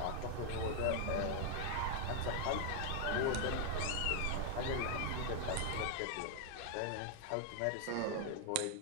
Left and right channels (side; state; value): both; different; correlation 0.00